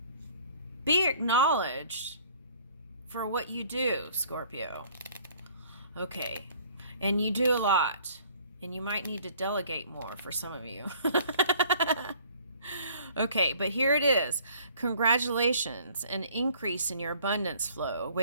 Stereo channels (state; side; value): inverted; both; correlation -0.55